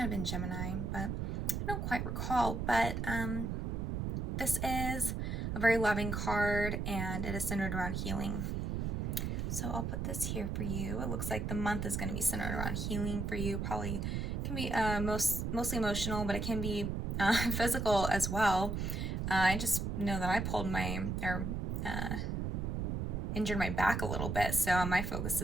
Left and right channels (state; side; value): noise; right; rumble, 1 dB below the sound